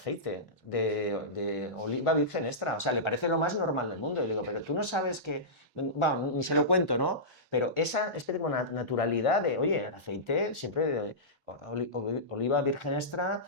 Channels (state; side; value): normal; both; correlation -0.16